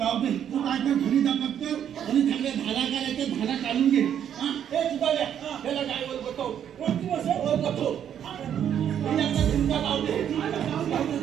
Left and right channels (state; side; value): quieter; left; 9.4 dB